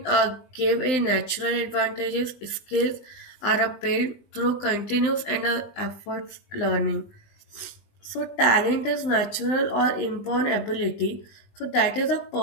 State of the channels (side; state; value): right; late; 19 ms